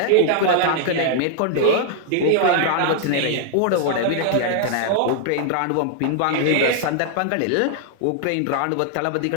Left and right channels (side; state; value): both; different; correlation 0.00